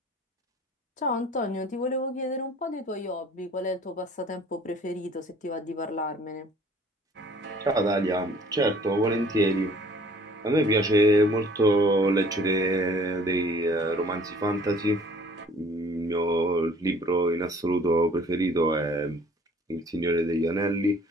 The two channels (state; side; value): normal; both; correlation 0.54